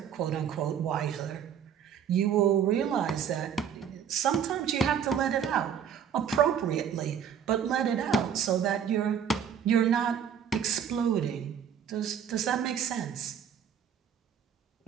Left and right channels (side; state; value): left; quieter; 8.3 dB